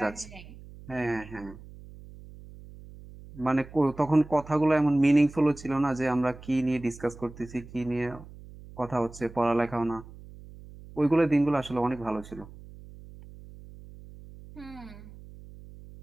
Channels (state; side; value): noise; right; hum, 18 dB below the sound